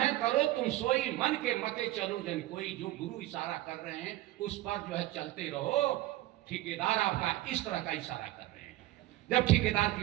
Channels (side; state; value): left; quieter; 16.2 dB